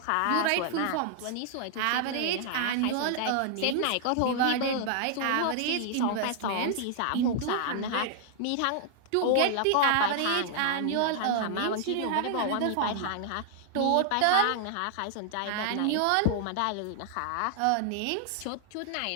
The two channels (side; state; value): both; different; correlation -0.01